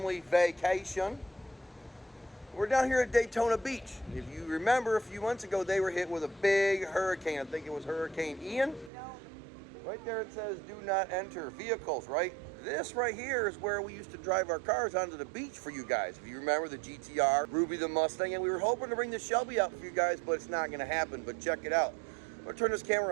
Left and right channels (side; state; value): left; drops out; at 8.9 s